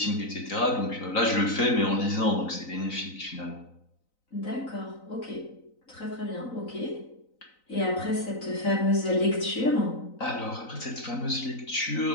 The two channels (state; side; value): late; right; 3.9 ms